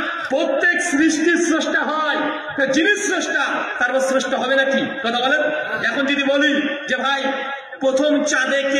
প্রত্যেক সৃষ্টির স্রষ্টা হয়, যিনি স্রষ্টা তারপর স্রষ্টা হবে নাকি? কথা বলেন। এখন যদি বলি যে ভাই প্রথম চাঁদে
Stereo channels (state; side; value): identical; both; correlation 1.00